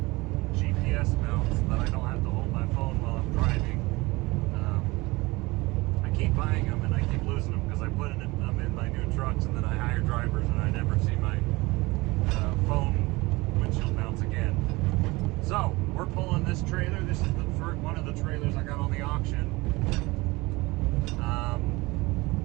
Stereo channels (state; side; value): quieter; left; 22.6 dB